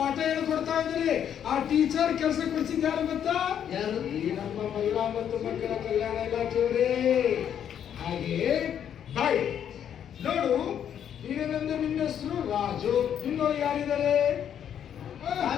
ಹೇಳ್ಕೊಡ್ತಾ ಇದ್ದಾರೆ. ಆ ಟೀಚರ್ ಕೆಲಸ ಕೊಡಿಸಿದ ಯಾರು ಗೊತ್ತಾ? ಯಾರು? ಈ ನಮ್ಮ ಮಹಿಳಾ ಮತ್ತು ಮಕ್ಕಳ ಕಲ್ಯಾಣ ಇಲಾಖೆಯವರೇ. ಹಾಗೆ ಬಾಯ್ ನೋಡು, ಈಗೇನಂದ್ರೆ ನಿನ್ನ ಹೆಸರು ರಾಜು, ಇನ್ನೊಂದು ಯಾರಿದ್ದಾರೆ?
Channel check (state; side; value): quieter; right; 9.2 dB